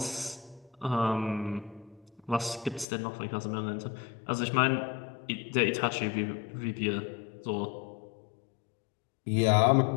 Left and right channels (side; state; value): right; drops out; at 2.9 s